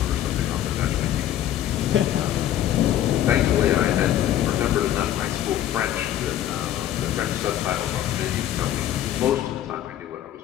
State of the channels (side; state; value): right; quieter; 11.8 dB